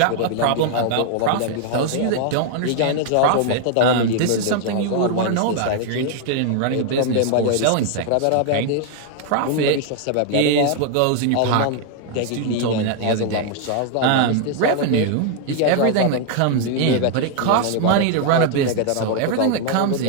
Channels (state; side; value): different; both; correlation 0.00